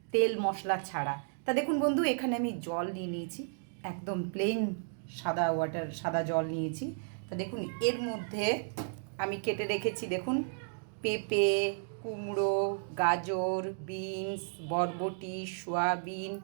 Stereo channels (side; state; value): left; silent; digital silence